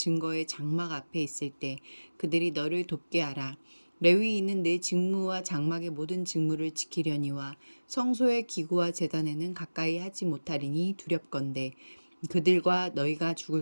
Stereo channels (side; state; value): both; inverted; correlation -1.00